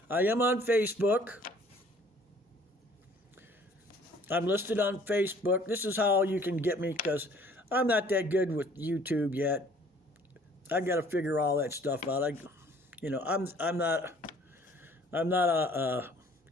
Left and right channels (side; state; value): both; normal; correlation 0.55